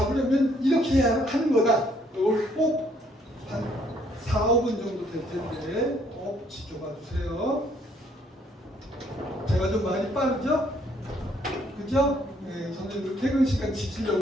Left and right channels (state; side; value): normal; both; correlation 0.66